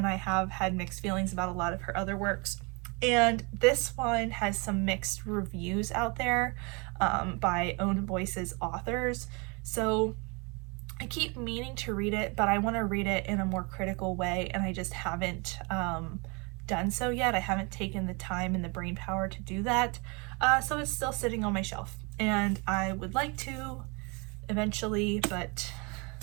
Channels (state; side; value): quieter; left; 30.5 dB